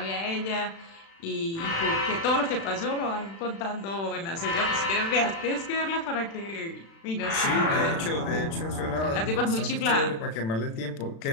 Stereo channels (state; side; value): late; right; 36 ms